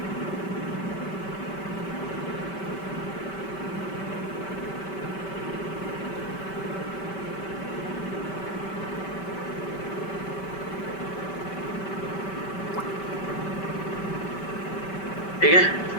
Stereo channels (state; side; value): late; right; 5.2 ms